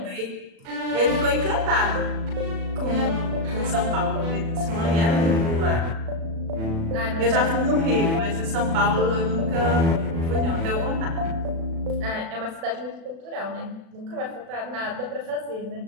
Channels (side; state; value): left; late; 36 ms